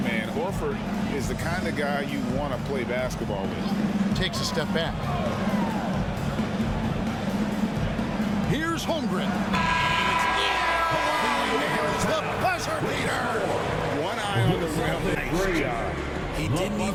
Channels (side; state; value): both; identical; correlation 1.00